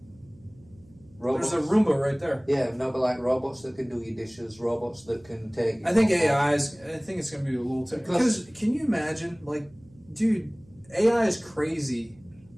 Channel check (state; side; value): noise; right; hum, 27 dB below the sound